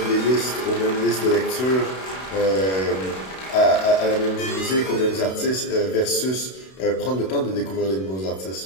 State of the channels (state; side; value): late; right; 32 ms